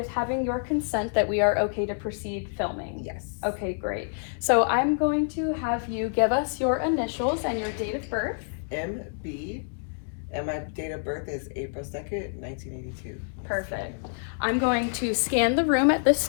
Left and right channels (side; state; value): right; silent; digital silence